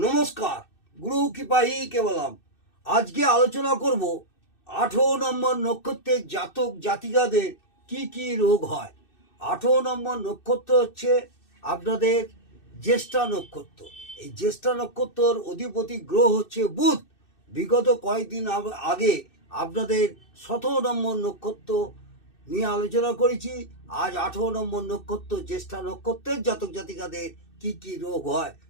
গুরু কৃপাই কেবলম। আজকে আলোচনা করব 18 নম্বর নক্ষত্রের জাতক জাতিকাদের কি কি রোগ হয়। 18 নম্বর নক্ষত্র হচ্ছে আপনাদের জ্যেষ্ঠা নক্ষত্র। এই জ্যেষ্ঠা নক্ষত্রর অধিপতি গ্রহ হচ্ছে বুধ। বিগত কয়েকদিন আগে আপনাদের 17 নম্বর নক্ষত্র নিয়ে আলোচনা করেছি। আজ 18 নম্বর নক্ষত্র জ্যেষ্ঠা নক্ষত্রের জাতক জাতিকাদের কি কি রোগ হয়।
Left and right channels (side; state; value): right; late; 2.6 ms